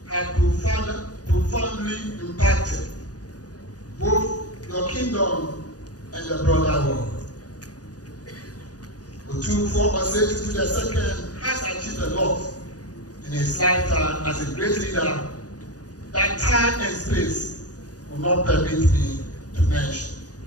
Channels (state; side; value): late; right; 0.68 ms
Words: have profoundly impacted both your kingdom and the broader world. Otumfuo Osei Tutu II has achieved a lot in his lifetime as a great leader that time and space will not permit me to mention.